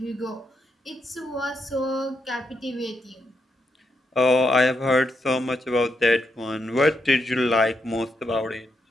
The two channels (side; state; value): both; normal; correlation 0.81